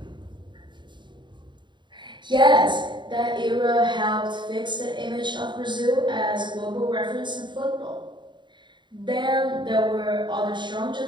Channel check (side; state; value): left; late; 0.22 ms